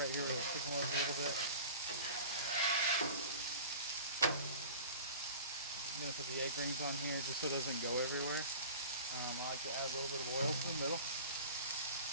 here with the chicken was a little bit. I'm gonna put the egg rings on here just so it doesn't go everywhere. I like to add a little bit of oil to the middle.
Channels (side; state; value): both; inverted; correlation -0.39